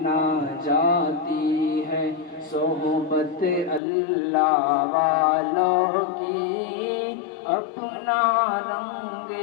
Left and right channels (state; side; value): drops out; right; at 3.8 s